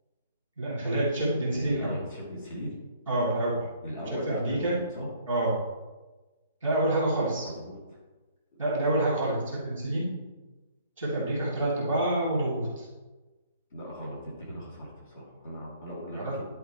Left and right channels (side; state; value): both; inverted; correlation -0.60